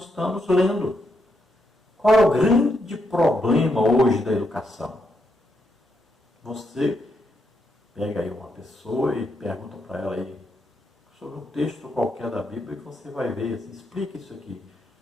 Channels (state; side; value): normal; both; correlation 0.80